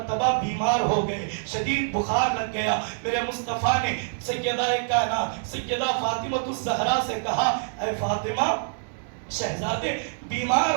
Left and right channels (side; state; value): left; silent; digital silence